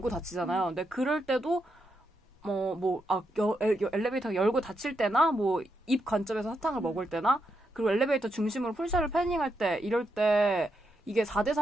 닫히잖아요. 근데 그럴 때도 엘리베이터가 열고 닫힐 때나, 뭐 입 관점에서 사탕을 먹을 때나, 그리고 엘리베이터 중심으로 풀샷을 패닝할 때, 이럴 때 이게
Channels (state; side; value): normal; both; correlation 0.82